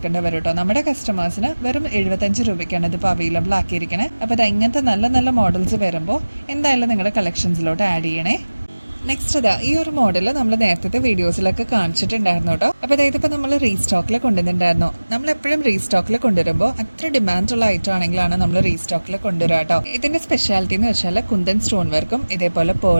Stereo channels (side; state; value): both; inverted; correlation -1.00